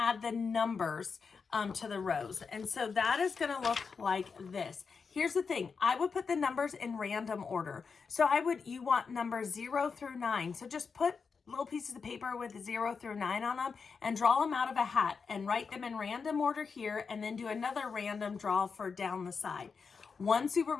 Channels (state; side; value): quieter; right; 5.4 dB